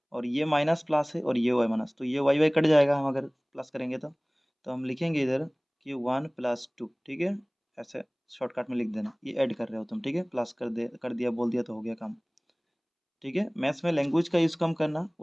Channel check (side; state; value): both; identical; correlation 1.00